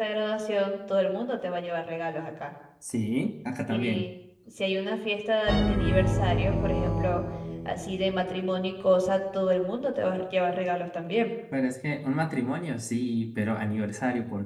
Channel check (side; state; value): both; identical; correlation 1.00